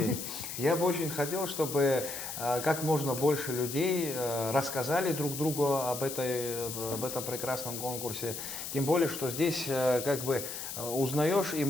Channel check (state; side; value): noise; left; hiss, 7 dB below the sound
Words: Я бы очень хотел, чтобы как можно больше людей рассказали друг другу об этом прекрасном конкурсе. Тем более, что здесь как бы узнаешь и